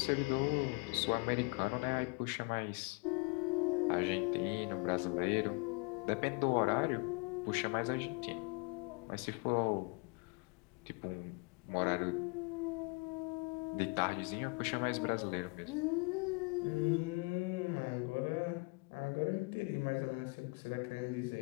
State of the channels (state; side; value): quieter; right; 31.0 dB